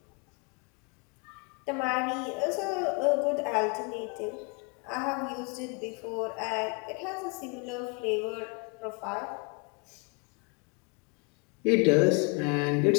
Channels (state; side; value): quieter; right; 32.8 dB